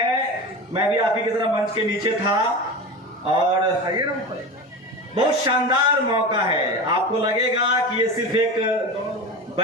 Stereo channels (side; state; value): both; normal; correlation 0.27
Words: मैं भी आप ही की तरह मंच के नीचे था और बहुत शानदार मौका है। आपको लगेगा कि ये सिर्फ एक